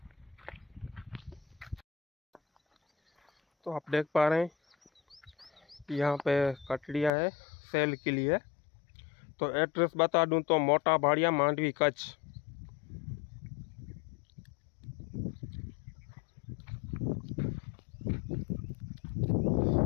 तो आप देख पा रहे हैं यहाँ पे कटड़िया है सेल के लिए। तो एड्रेस बता दूं तो मोटा भाड़िया, मांडवी, कच्छ।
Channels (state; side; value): drops out; right; at 7.1 s